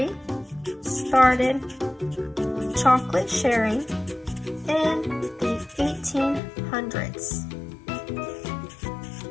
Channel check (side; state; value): right; drops out; at 6.4 s